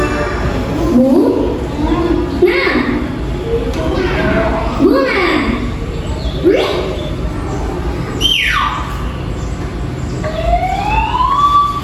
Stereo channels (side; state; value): both; identical; correlation 1.00